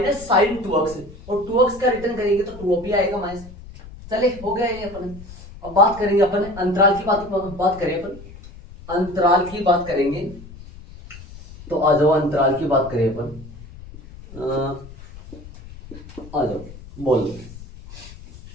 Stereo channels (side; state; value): left; noise; rumble, 17 dB below the sound